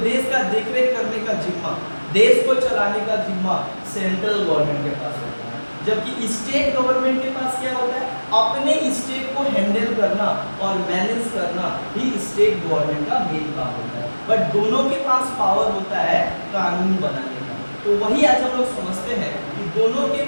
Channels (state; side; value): inverted; both; correlation -1.00